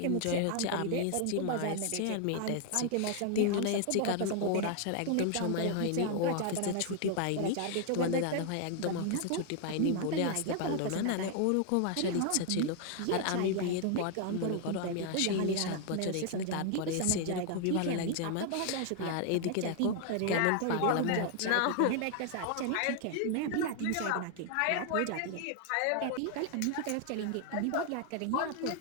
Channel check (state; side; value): different; both; correlation 0.00